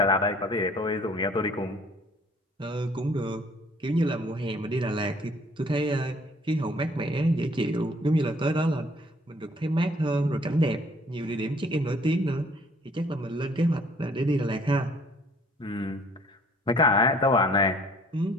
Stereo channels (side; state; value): both; normal; correlation 0.57